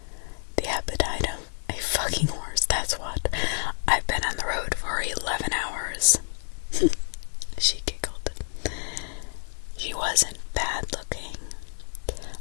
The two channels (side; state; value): right; silent; digital silence